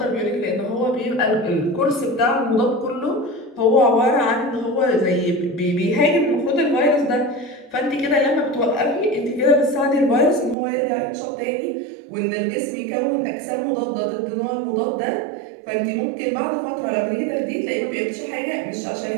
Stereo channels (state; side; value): drops out; left; at 10.6 s